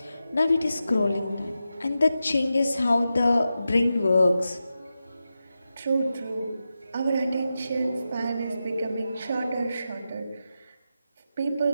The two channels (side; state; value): both; inverted; correlation -0.90